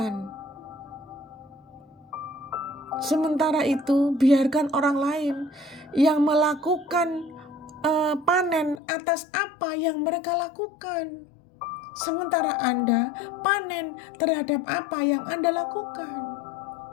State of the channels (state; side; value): drops out; right; at 8.8 s